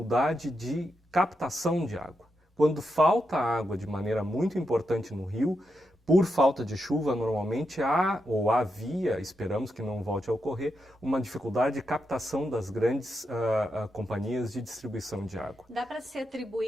de captação de água. Quando falta água de maneira muito importante no rio, por falta de chuva, normalmente há, ou havia, esperamos que não volte a ocorrer, uma dificuldade de captação das grandes companhias de distribuição de água. Dá para se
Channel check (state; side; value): normal; both; correlation 0.85